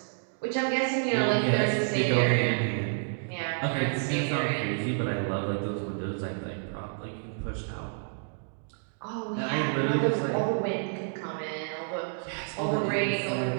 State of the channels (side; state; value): left; silent; digital silence